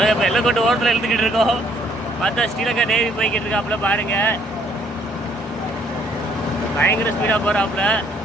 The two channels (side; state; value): both; normal; correlation 0.64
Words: இப்போ எல்லக்கோட்டை ஓரத்தில் எழுத்துக்கிட்டு இருக்கோம். பார்த்தா ஸ்ரீலங்கா நேவி போய்கிட்டு இருக்காப்புல பாருங்க. பயங்கர ஸ்பீடாக போகிறாப்புல.